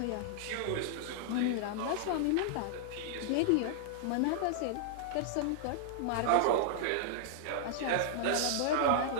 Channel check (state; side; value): different; both; correlation -0.01